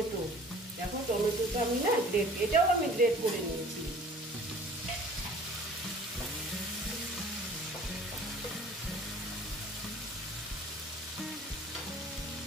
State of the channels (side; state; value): both; normal; correlation 0.49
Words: দেখো টমেটোটা আমি না এটাও আমি গ্রেট করে নিয়েছি।